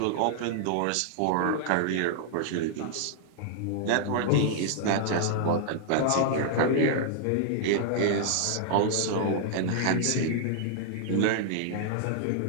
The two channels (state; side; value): different; both; correlation -0.01